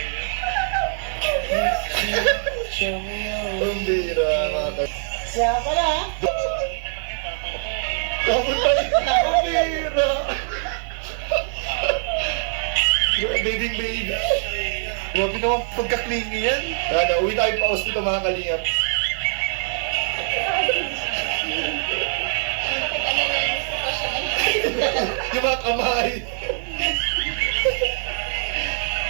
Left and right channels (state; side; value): silent; left; digital silence